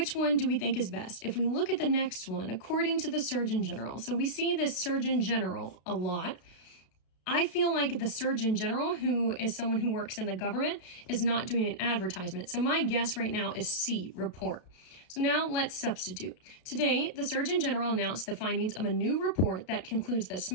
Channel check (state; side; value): late; right; 32 ms